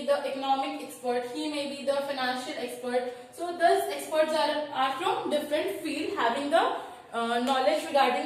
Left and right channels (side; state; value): both; identical; correlation 1.00